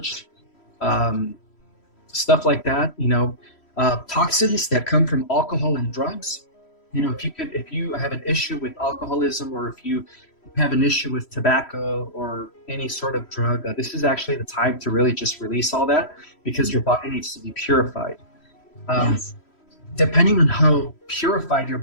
stuff like that. Toxins that come from alcohol and drugs. If you have an issue with alcoholism, or if you have an issue with tobacco or any sort of drug, this is actually the time to really just release all that, because your body needs to be purified. Yes. Depending on how purified your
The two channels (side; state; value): right; late; 3.1 ms